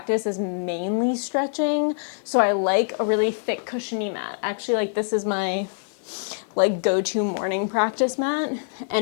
is mainly stretching. So I like a really thick cushiony mat. Actually, like this is my like go-to morning practice mat,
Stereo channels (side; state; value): right; silent; digital silence